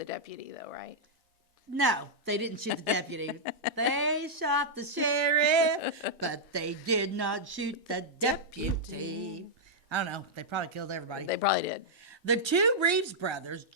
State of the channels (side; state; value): both; normal; correlation -0.07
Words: deputy, though, right? No, they didn't shoot the deputy. They shot the sheriff, but they did not shoot the deputy. I don't know. They probably killed everybody. They probably did. The two Reeves brothers,